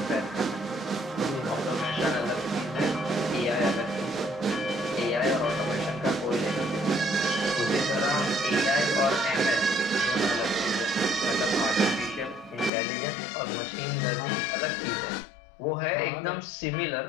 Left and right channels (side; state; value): right; drops out; at 12.7 s